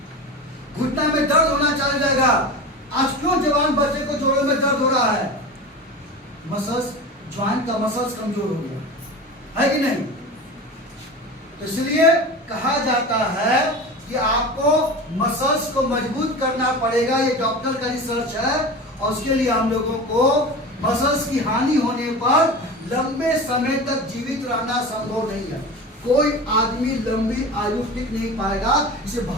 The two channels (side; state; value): both; normal; correlation 0.30